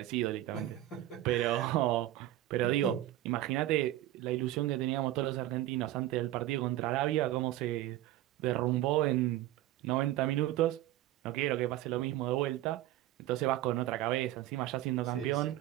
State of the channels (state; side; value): quieter; left; 14.7 dB